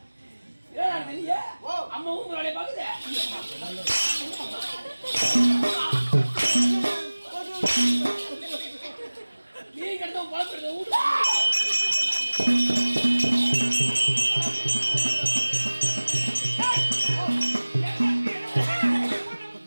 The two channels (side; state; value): both; inverted; correlation -1.00